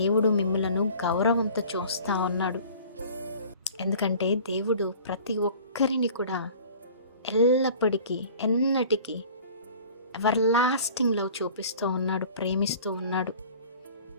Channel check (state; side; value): inverted; both; correlation -0.45